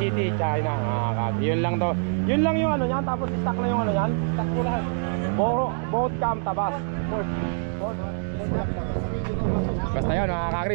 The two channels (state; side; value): silent; left; digital silence